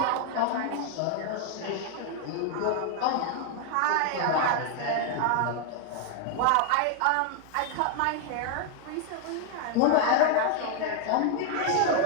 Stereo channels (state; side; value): different; both; correlation 0.00